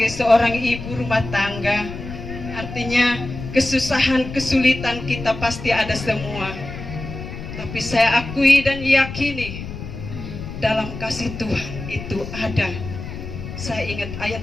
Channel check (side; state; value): left; noise; rumble, 9 dB below the sound